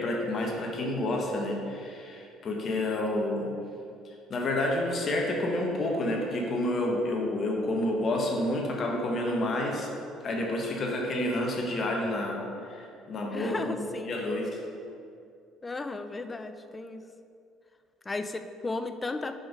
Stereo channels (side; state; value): both; normal; correlation 0.65